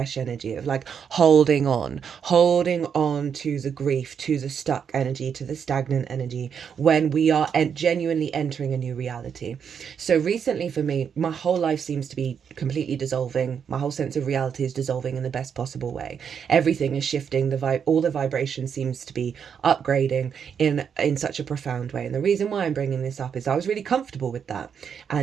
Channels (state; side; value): quieter; left; 7.3 dB